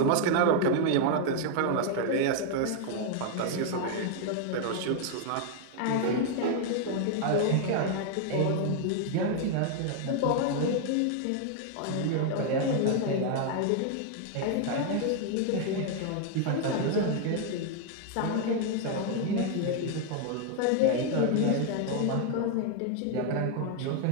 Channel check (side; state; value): both; different; correlation 0.00